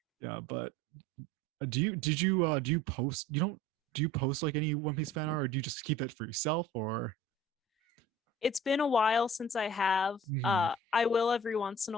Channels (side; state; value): both; normal; correlation 0.46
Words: Yeah, but do you post? You don't do you post like any One Piece fan art, or do you just keep that for yourself? Or It's been a while since I have. Mhm. I will every once in